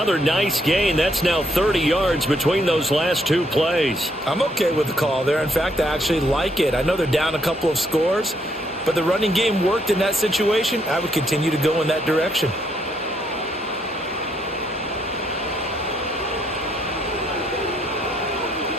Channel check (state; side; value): normal; both; correlation 0.73